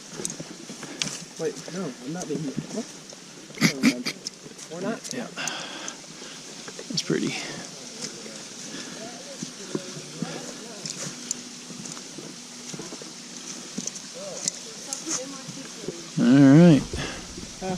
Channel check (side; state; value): both; identical; correlation 1.00